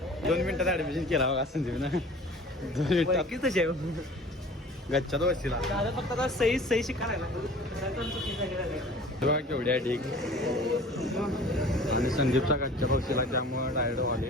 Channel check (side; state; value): both; normal; correlation 0.44